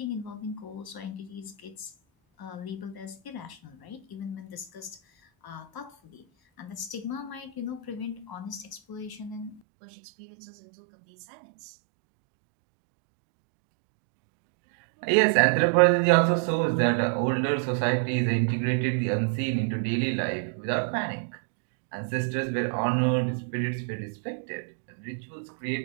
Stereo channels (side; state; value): left; drops out; at 9.6 s